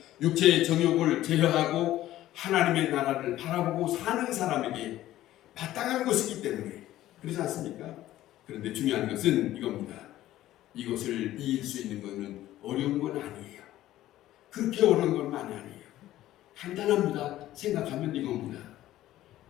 육체의 정욕을 제어하고 하나님의 나라를 바라보고 사는 사람에게 마땅한 것이기 때문에 그렇지 않습니까? 그런데 중요한 것은 이겁니다. 이것을 이길 수 있는 것은 어려운 건 아니에요. 그렇게 어려운 건 많이 아니에요. 간단합니다. 생각하면 이겁니다.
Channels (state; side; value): quieter; right; 14.3 dB